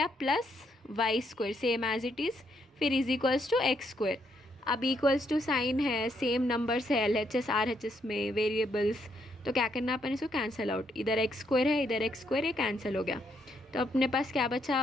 plus Y square same as it is, फिर is equals to X square. अब इक्वल्स टू साइन है, सेम नंबर्स है LHS RHS में वेरिएबल्स, तो क्या करना अपन इसको कैंसिल आउट, इधर एक्स स्क्वायर है इधर एक्स स्क्वायर, ये कैंसिल हो गया। तो अपने पास क्या बचा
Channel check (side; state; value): both; normal; correlation 0.75